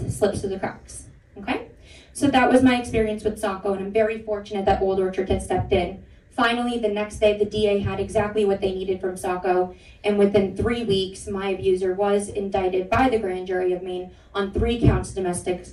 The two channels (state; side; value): identical; both; correlation 1.00